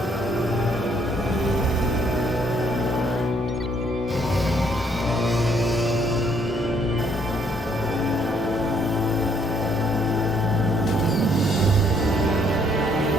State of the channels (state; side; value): normal; both; correlation 0.67